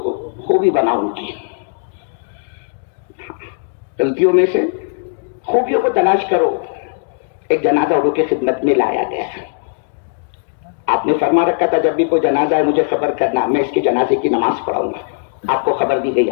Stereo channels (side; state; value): right; silent; digital silence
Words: خوبی بناؤ. ان کی غلطیوں میں سے خوبیوں کو تلاش کرو. ایک جنازہ اردو کی خدمت میں لایا گیا، آپ نے فرما رکھا تھا جب بھی کوئی جنازہ ہے مجھے خبر کرنا، میں اس کے جنازے کی نماز پڑھاؤں گا. آپ کو خبر دی گئی،